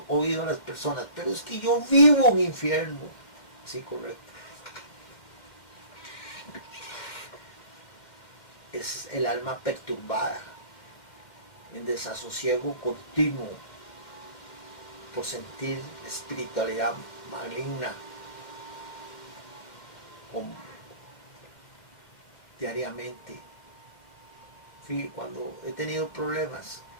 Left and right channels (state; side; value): late; right; 2.1 ms